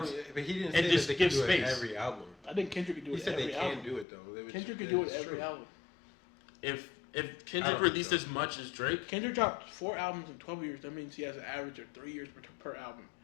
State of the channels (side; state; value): right; drops out; at 4.0 s